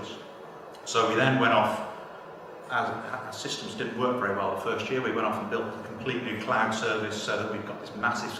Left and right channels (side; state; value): both; identical; correlation 1.00